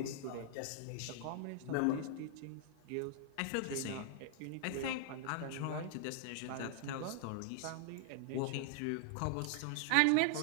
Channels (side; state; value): both; different; correlation 0.00